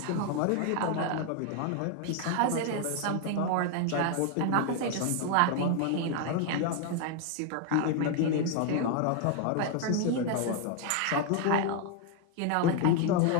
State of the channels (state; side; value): different; both; correlation 0.00